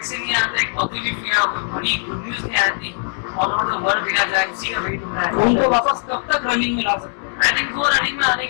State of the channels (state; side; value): silent; right; 55 dB below the other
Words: नहीं आता, एक पॉजिटिव या कोई बड़ी गुड न्यूज नहीं आती ऑल ओवर द वर्ल्ड देखा जाए, उसी का वेट हो रहा है। उनको वापस कब तक रनिंग में ला सकते हैं? आई थिंक वो रनिंग में आने